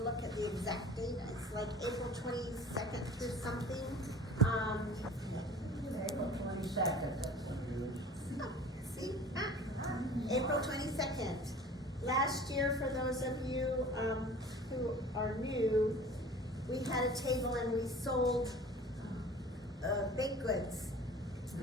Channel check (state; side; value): normal; both; correlation 0.44